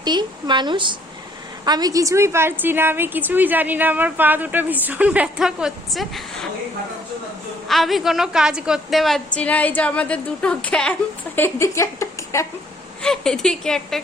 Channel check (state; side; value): normal; both; correlation 0.63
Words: মানুষ। আমি কিছুই পারছি না, আমি কিছুই জানি না, আমার পা দুটো ভীষণ ব্যথা করছে, আমি কোনো কাজ করতে পারছি না। এই যে আমাদের দুটো ক্যাম্প, এদিকে একটা ক্যাম্প, এদিকে একটা